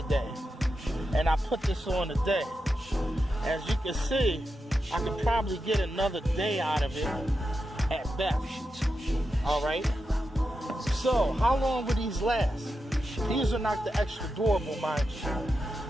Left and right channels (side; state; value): both; normal; correlation 0.88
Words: And I put this on today. As you can see, I could probably get another day out of it at best. All right. So how long would these last? These are not the extra durable, mind you.